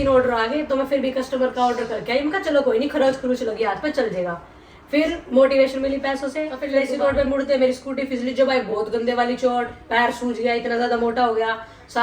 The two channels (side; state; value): both; identical; correlation 1.00